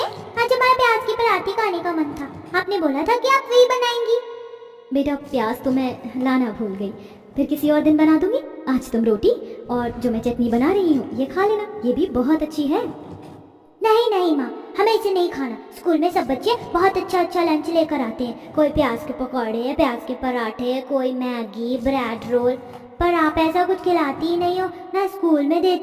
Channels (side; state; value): both; identical; correlation 1.00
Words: आज हमारा प्याज की पराठे खाने का मन था, आपने बोला था कि आप वही बनाएंगी। बेटा प्याज तो मैं लाना भूल गई, फिर किसी और दिन बना दूंगी। आज तुम रोटी और जो मैं चटनी बना रही हूँ ये खा लेना, ये भी बहुत अच्छी है। नहीं नहीं माँ, हमें इसे नहीं खाना। स्कूल में सब बच्चे बहुत अच्छा अच्छा लंच लेकर आते हैं, कोई प्याज के पकौड़े, प्याज के पराठे, कोई मैगी, ब्रेड रोल, पर आप ऐसा कुछ खिलाती ही नहीं हो, ना स्कूल में